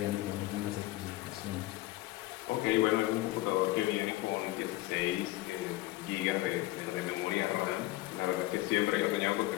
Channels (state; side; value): quieter; right; 17.9 dB